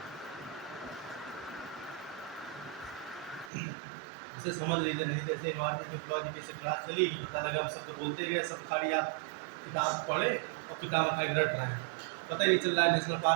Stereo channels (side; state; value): left; drops out; at 3.5 s